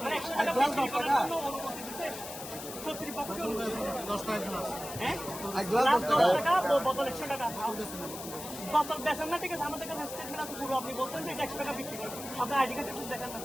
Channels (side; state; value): left; noise; hiss, 10 dB below the sound